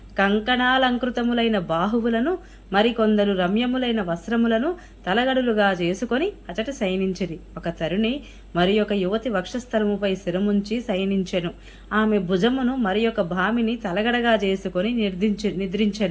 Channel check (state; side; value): identical; both; correlation 1.00